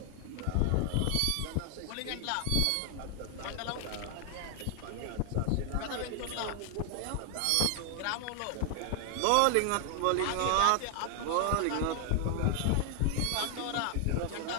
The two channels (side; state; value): both; different; correlation 0.00